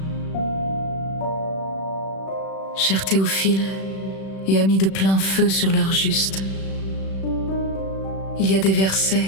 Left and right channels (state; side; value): late; right; 36 ms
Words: Cher Théophile et amis de plein feu sur l'heure juste, il y a des